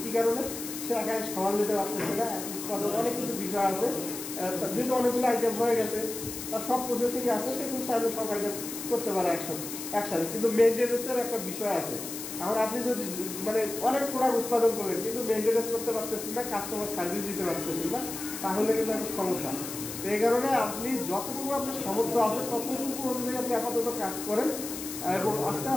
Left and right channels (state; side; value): noise; left; hiss, 8 dB below the sound